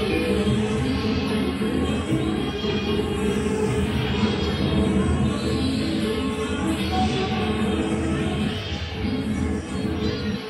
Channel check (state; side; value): identical; both; correlation 1.00